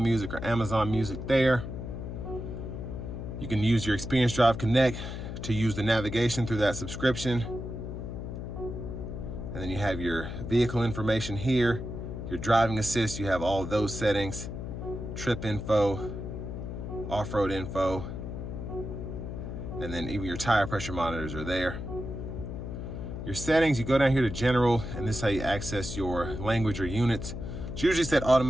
or Amazon Music there. You can use your Experience Drive Connect to use the navigation through that subscription. And then you have your vehicle information here, your driving assist, you have all of those settings, trip info, off-road info, and then even your tire pressure monitors are there. Your settings, you go down here to general, and this is how you access your language or units. It's usually set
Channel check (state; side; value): noise; left; hum, 7 dB below the sound